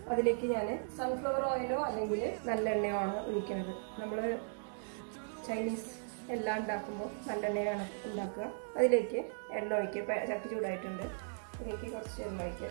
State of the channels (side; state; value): left; silent; digital silence